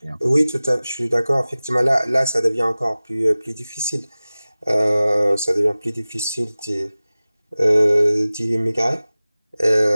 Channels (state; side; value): inverted; both; correlation -0.98